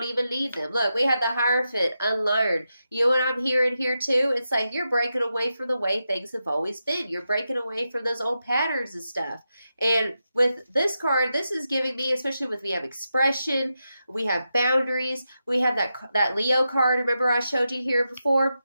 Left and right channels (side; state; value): both; inverted; correlation -0.88